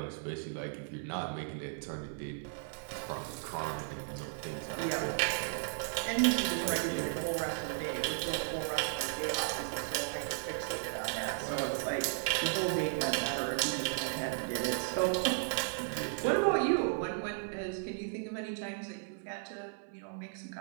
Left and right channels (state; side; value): silent; left; 54 dB below the other